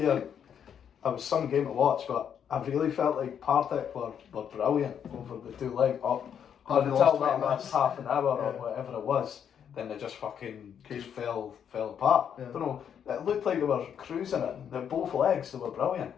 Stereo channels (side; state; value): right; quieter; 8.3 dB